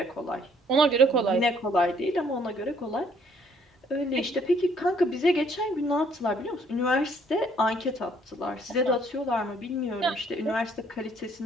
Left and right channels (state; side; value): normal; both; correlation 0.64